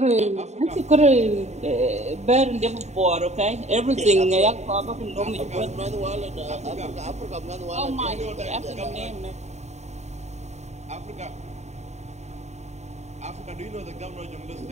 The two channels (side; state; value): left; late; 0.33 ms